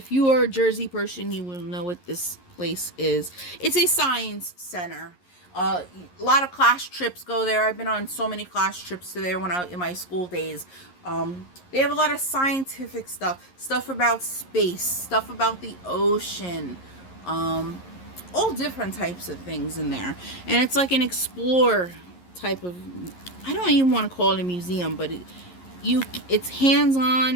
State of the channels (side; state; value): right; late; 11 ms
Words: you are a Jersey person, you will know what this place is. It's a science center. A lot of class trips go there. I've been on so many class trips to there when I in my school days. They have a lot of scientific stuff about space, stuff about the ocean, all different types of things in there. And it's like an explore type of, I don't even want to call it a museum, but it's hands-on